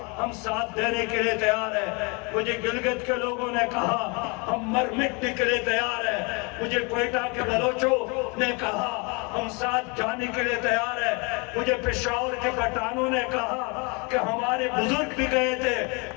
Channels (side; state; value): right; quieter; 30.8 dB